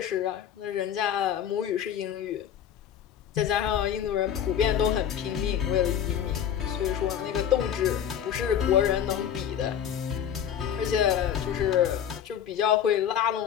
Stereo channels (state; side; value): quieter; right; 9.3 dB